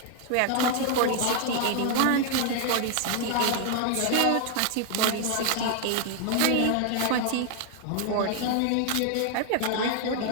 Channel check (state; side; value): different; both; correlation 0.00